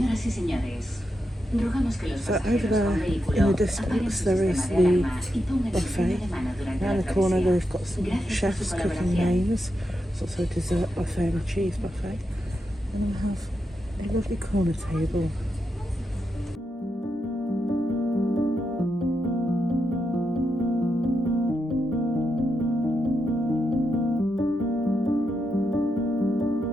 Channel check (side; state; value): both; normal; correlation 0.85